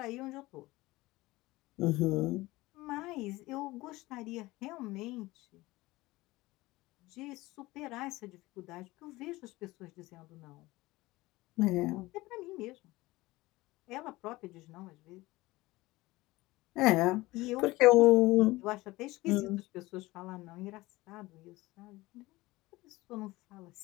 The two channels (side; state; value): right; quieter; 19.8 dB